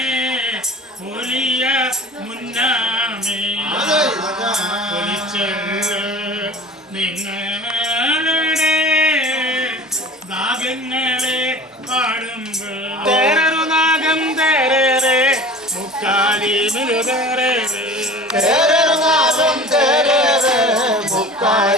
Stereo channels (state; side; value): normal; both; correlation 0.40